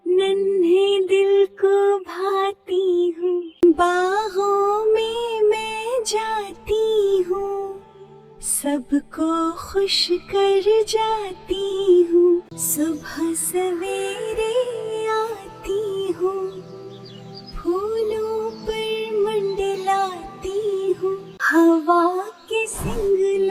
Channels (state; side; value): identical; both; correlation 1.00